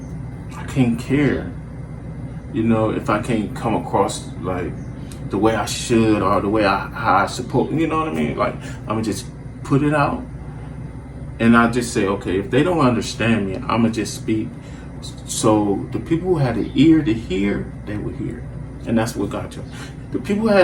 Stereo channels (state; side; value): identical; both; correlation 1.00